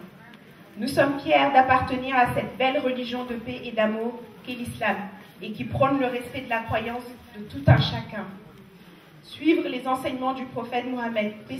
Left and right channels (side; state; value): both; identical; correlation 1.00